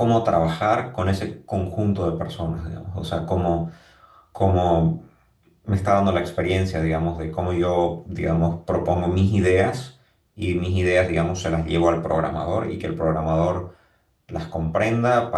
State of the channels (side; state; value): both; identical; correlation 1.00